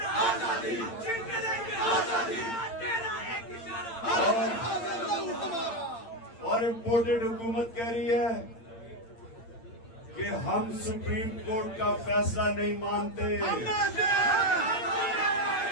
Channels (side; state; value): right; late; 8.8 ms